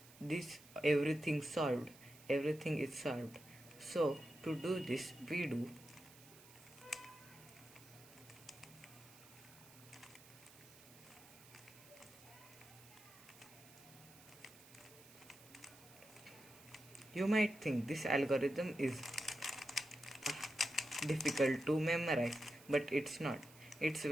this everything solved. Everything is solved. So to do this, we do you might think this algorithm is difficult to memorize, but it's not. It's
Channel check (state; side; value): noise; right; hiss, 21 dB below the sound